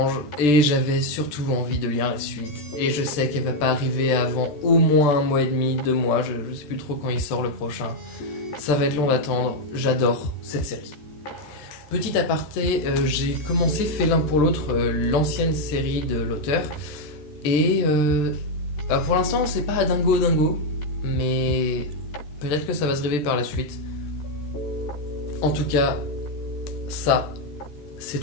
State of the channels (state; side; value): late; right; 13 ms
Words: et j'avais surtout envie de lire la suite. Et je sais qu'elle va pas arriver avant au moins 1 mois et demi, 2 mois, je sais plus trop quand il sort le prochain. Ça va être long d'attendre, j'adore cette série. Petit aparté, j'ai commencé fait l'un pour l'autre l'ancienne série de l'auteur. Et pour l'instant c'est pas dingo, mais peut-être que ça va se révéler par la suite. En tout cas, ça, c'est